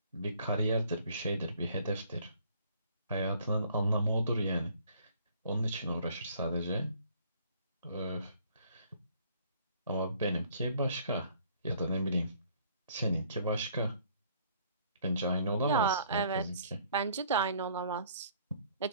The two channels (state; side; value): inverted; both; correlation -0.59